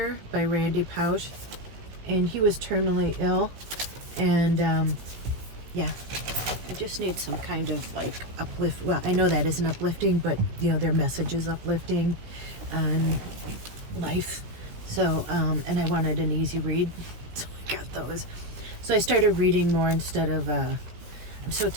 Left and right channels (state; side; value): late; left; 16 ms